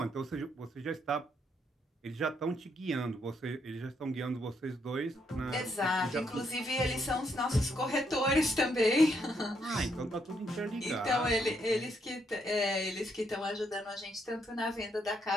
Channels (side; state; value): both; normal; correlation 0.75